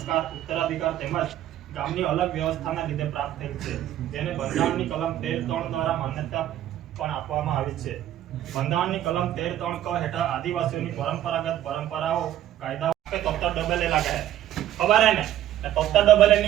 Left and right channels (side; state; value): left; quieter; 12.4 dB